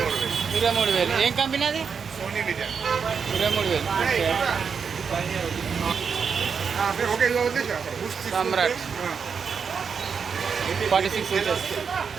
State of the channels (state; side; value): quieter; left; 6.1 dB